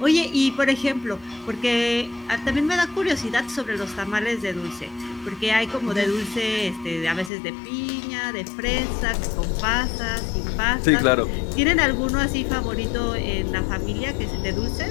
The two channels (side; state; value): right; drops out; at 7.3 s